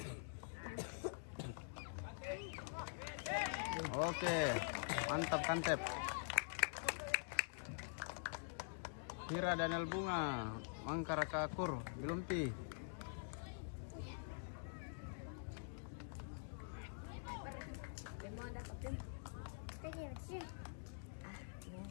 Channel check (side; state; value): right; silent; digital silence